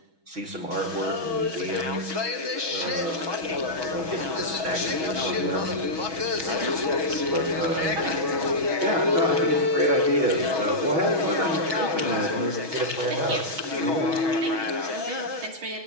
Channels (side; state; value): left; late; 6.2 ms